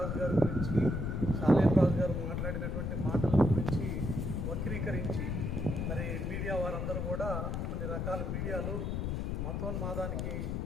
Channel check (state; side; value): noise; left; rumble, 1 dB below the sound